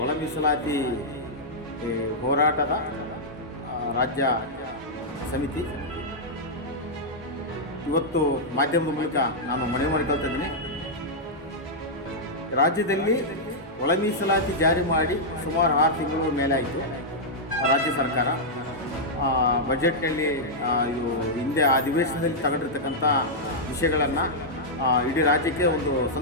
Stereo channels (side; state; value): both; normal; correlation -0.07